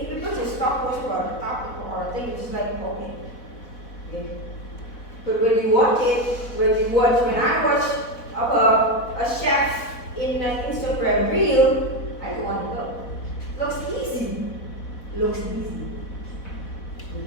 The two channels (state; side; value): late; right; 4.1 ms